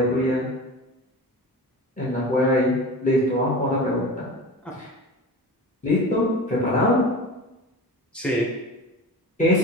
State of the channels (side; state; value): both; normal; correlation 0.32